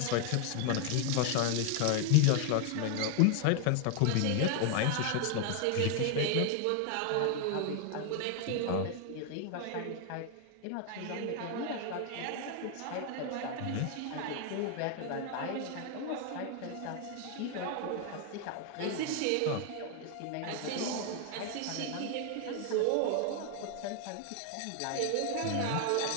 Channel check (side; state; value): both; different; correlation 0.00